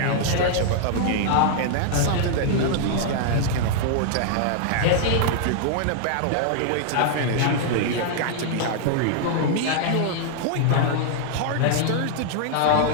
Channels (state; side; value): different; both; correlation -0.01